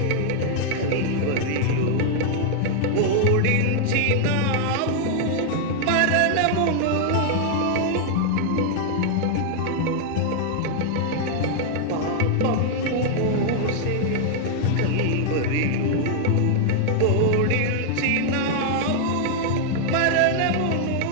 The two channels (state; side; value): different; both; correlation 0.00